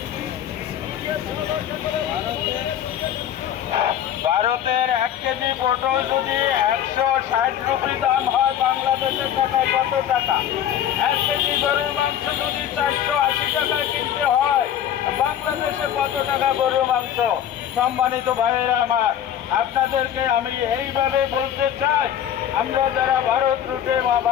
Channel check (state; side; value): quieter; right; 10.3 dB